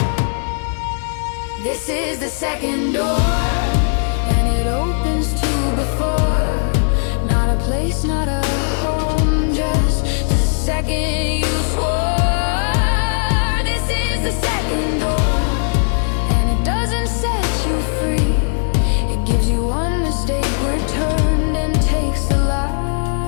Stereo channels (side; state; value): right; silent; 62 dB below the other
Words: This is the second door, and it opens to before. Not a place, not a home, just the second you swore. This is the second door, and it doesn't set you free. It gives you one mistake returned and takes the